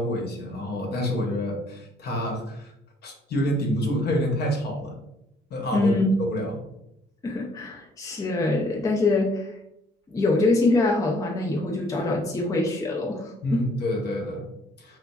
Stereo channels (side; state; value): both; normal; correlation 0.63